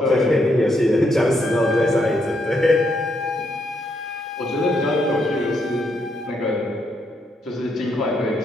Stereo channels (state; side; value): normal; both; correlation 0.77